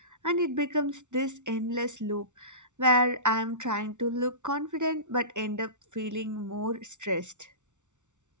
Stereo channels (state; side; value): late; left; 0.85 ms